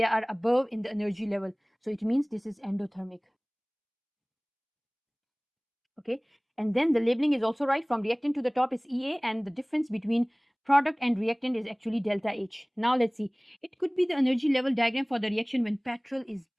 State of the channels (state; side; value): identical; both; correlation 1.00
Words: are above in the energy level. So it means this is endothermic. Okay, and then the labeling is also right. From reactant to the top is EA, and the difference between product and reactant is actually delta H. Now let's see. It could be the energy level diagram for the reaction when petrol is